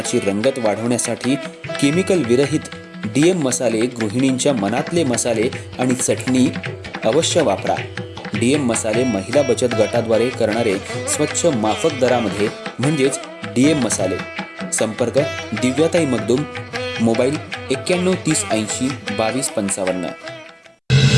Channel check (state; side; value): identical; both; correlation 1.00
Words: रंगत वाढवण्यासाठी केमिकल विरहित डीएम मसाले, गृहिणींच्या मनातले मसाले आणि चटणी अवश्य वापरा. डीएम मसाले महिला बचत गटाद्वारे करणारे स्वच्छ माफक दरामध्ये म्हणजेच डीएम मसाले. संपर्क दिव्याताई मगदूम, मोबाईल 91 30 80 22 55.